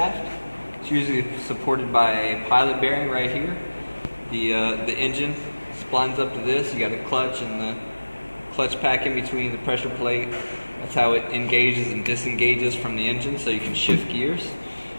It's usually supported by a pilot bearing right here. The engine splines up to this. You got a clutch and the clutch pack in between the pressure plate. That's how it engages and disengages from the engine, so you can shift gears.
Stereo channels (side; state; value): both; inverted; correlation -1.00